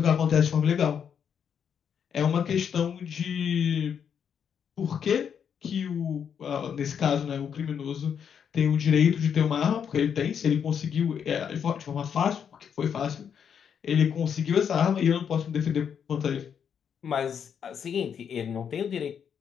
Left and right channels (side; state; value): right; quieter; 7.7 dB